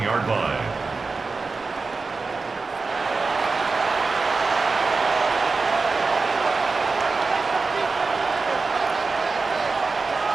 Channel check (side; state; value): left; quieter; 4.1 dB